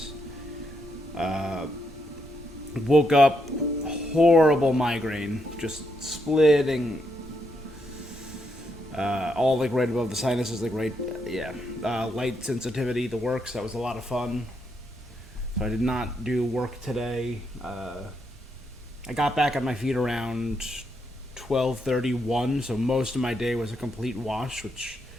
Woke up, horrible migraine, just splitting, all like right above the sinuses, like right, yeah. Light sensitivity, the works, that was a lot of fun. So I did not do work today. I got back on my feet around 12:31, so most of my day was a complete wash, which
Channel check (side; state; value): right; noise; rumble, 20 dB below the sound